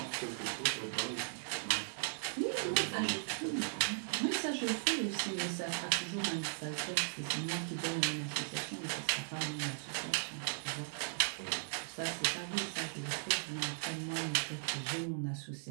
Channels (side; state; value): left; silent; digital silence